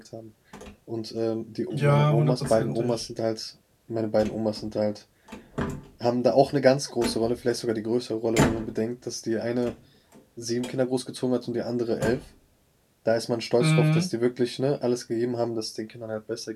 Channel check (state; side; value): identical; both; correlation 1.00